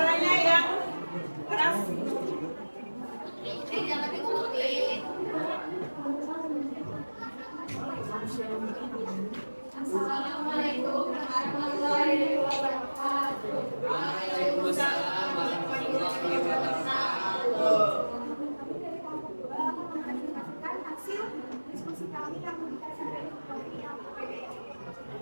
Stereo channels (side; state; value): both; inverted; correlation -1.00